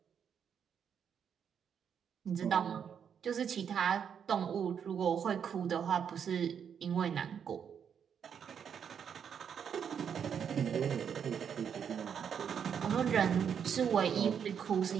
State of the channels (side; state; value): left; quieter; 7.7 dB